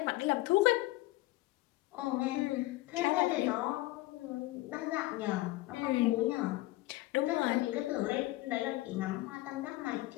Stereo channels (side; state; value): right; quieter; 18.4 dB